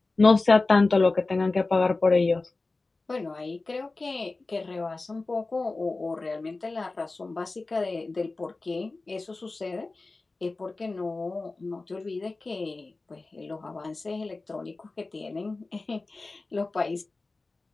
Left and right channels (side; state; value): right; quieter; 3.4 dB